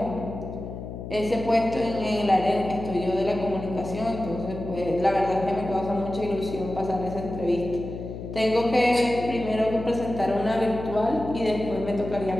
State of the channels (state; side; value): noise; left; hum, 9 dB below the sound